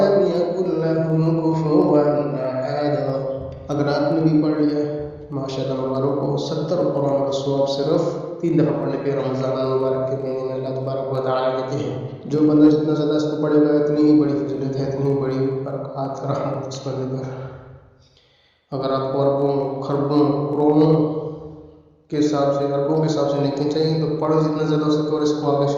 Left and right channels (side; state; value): both; identical; correlation 1.00